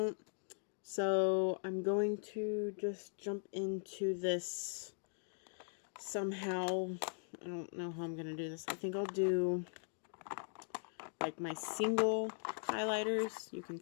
So I'm going to just jump into this somehow. I don't know how I'm going to do this. I think I'll do like my single highlighters. You can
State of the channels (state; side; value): silent; right; digital silence